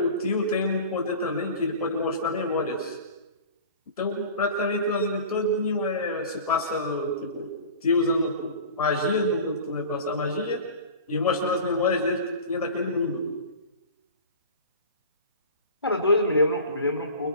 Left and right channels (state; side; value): inverted; both; correlation -0.38